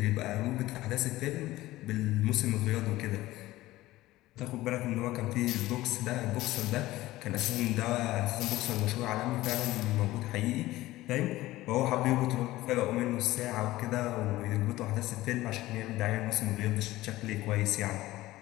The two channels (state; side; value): quieter; right; 17.1 dB